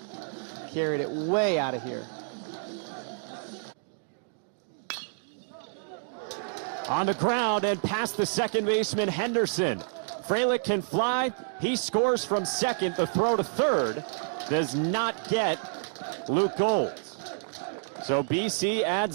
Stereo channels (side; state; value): left; silent; digital silence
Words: Carried it way out of here. On the ground and past the second baseman Henderson. Frelick can fly. He scores from second. The throw to third does not get Luke Gold. So BC